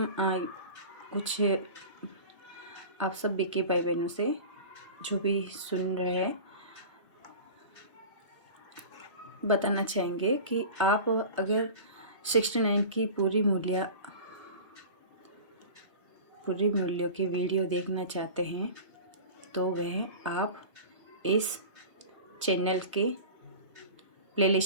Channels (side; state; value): both; inverted; correlation -0.35